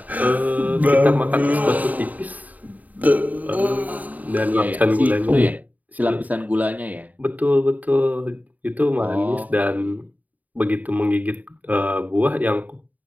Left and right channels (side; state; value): left; late; 0.076 ms